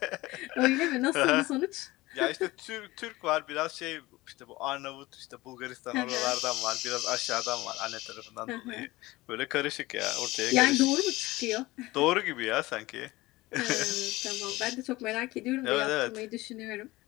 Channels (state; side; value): quieter; right; 19.7 dB